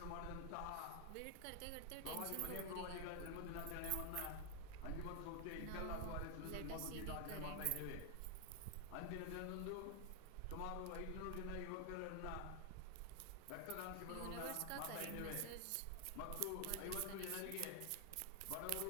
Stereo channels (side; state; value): both; different; correlation 0.00